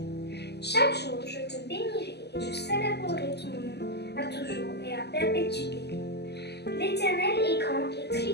Chaque jour, je te bénirai et je célébrerai ton nom à toujours et à perpétuité. L'Éternel est grand et très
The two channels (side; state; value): right; late; 0.49 ms